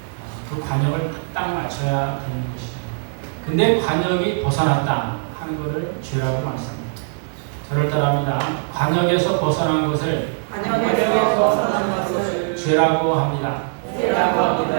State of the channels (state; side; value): silent; left; digital silence